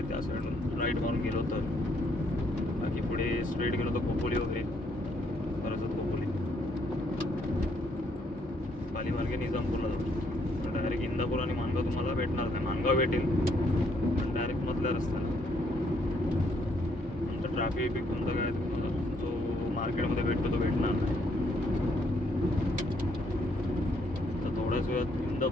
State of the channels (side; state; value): both; normal; correlation 0.70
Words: त्या साईडून राईट मारून गेलो तर बाकी पुढे स्ट्रेट गेलो तर खोपोली वगैरे खरंच खोपोली. पाली मार्गे निजामपूरला जातो. डायरेक्ट इंदापूर आणि माणगाव तुम्हाला भेटणार नाही. माणगाव भेटेल पण डायरेक्ट मधल्या रस्त्याला. तुमचं ट्रॅफिक तुमचं काय तुम्हाला जो मार्केटमध्ये भेटतो तो भेटणार नाही. तर थोड्याच वेळात